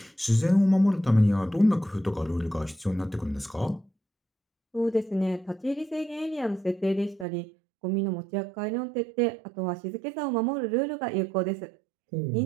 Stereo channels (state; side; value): drops out; left; at 7.2 s